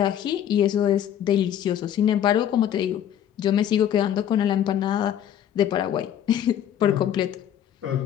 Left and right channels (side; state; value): right; quieter; 10.2 dB